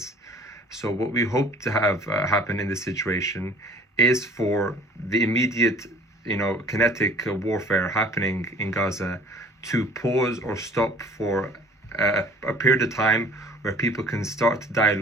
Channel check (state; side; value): normal; both; correlation 0.49